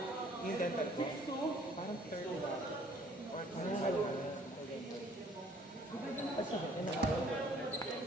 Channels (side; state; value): both; normal; correlation 0.58